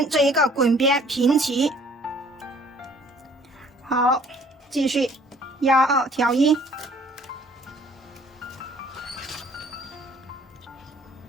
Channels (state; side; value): normal; both; correlation 0.57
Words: 这一个滚边平齐。好，继续压2挑1。